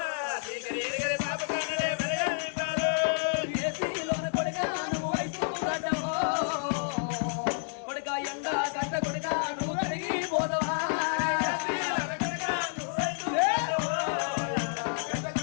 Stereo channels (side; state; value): right; silent; 58 dB below the other